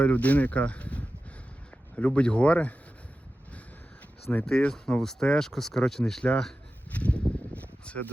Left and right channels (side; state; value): both; normal; correlation 0.93